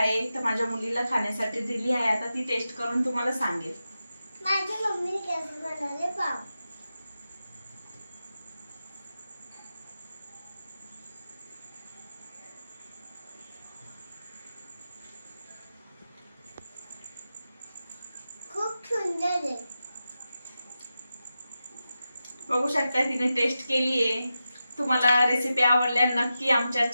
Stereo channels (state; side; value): inverted; both; correlation -0.91